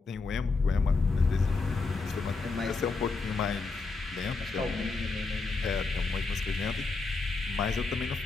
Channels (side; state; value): right; quieter; 4.0 dB